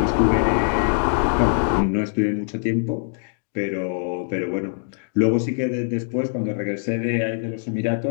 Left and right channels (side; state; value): right; silent; digital silence